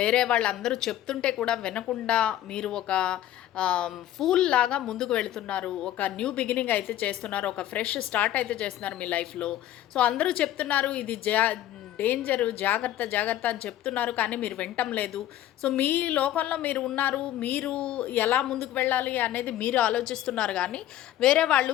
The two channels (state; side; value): quieter; right; 12.8 dB